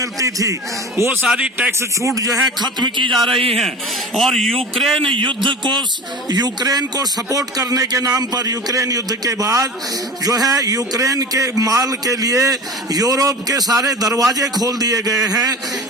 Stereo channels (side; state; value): both; normal; correlation 0.35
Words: थी, वो सारी टैक्स छूट जो है खत्म की जा रही है। और यूक्रेन युद्ध को, यूक्रेन को सपोर्ट करने के नाम पर, यूक्रेन युद्ध के बाद जो है यूक्रेन के माल के लिए यूरोप के सारे दरवाजे खोल दिए गए हैं,